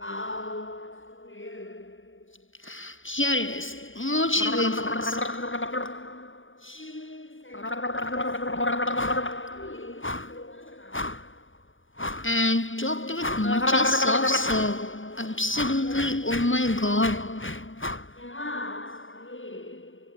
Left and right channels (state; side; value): late; right; 0.57 ms